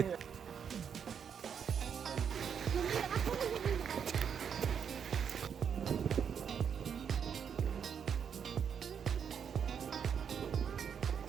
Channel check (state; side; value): quieter; left; 7.5 dB